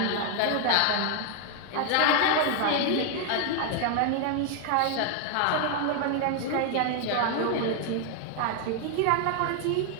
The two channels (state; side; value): different; both; correlation 0.00